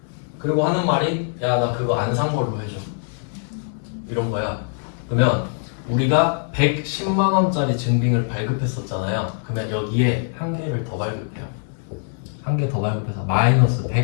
그리고 하는 말이 야, 나 그거 안 산 걸로 해줘. 이런 거야. 그러면 우리가 110만 원짜리 증빙을 발급했었잖아요. 그러면 여기에 한 개를 더 발급해요. 한 개 더 발급해서 마이너스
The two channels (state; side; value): silent; right; 64 dB below the other